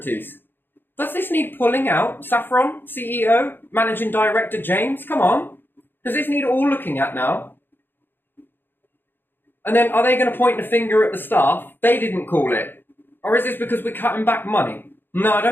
Does this need pulling out? Saffron, CEO, Managing Director James? Come on. Does this need all looking at now? And then are they going to point the finger at the staff? They didn't call it. Or is this because we're cutting back money? No, I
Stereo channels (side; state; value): right; late; 0.098 ms